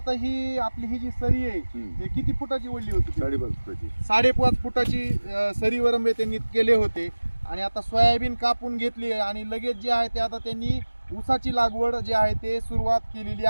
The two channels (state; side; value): inverted; both; correlation -1.00